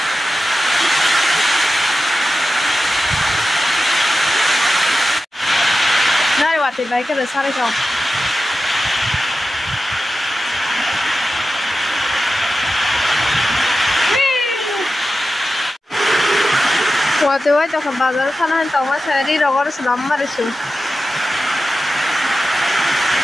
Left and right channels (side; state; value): both; normal; correlation 0.92